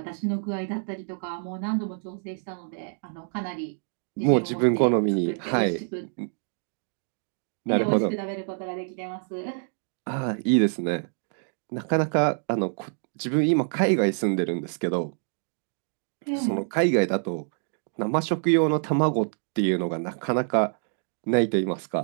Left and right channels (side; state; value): left; silent; digital silence